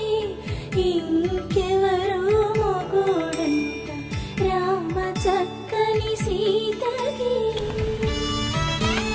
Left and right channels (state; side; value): identical; both; correlation 1.00